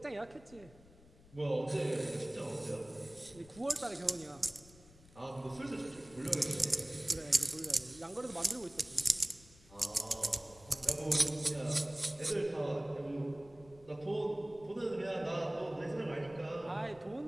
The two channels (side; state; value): left; noise; rumble, 23 dB below the sound